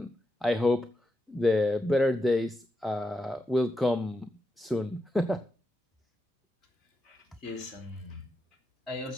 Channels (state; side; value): normal; both; correlation 0.87